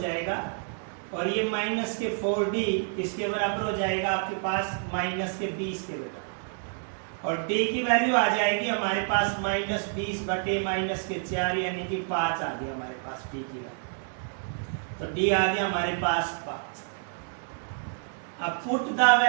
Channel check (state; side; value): silent; left; 58 dB below the other